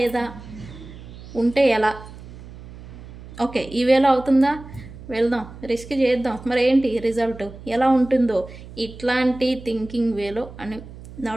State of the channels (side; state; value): right; noise; hum, 16 dB below the sound